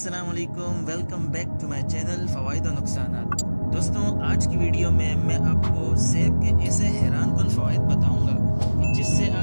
वालेकुम, welcome back to my channel फ़वाइद और नुकसानात। दोस्तों, आज की वीडियो में मैं आपको सेब के ऐसे हैरान कुन फ़वाइद बताऊंगा कि जिससे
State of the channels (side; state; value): both; inverted; correlation -1.00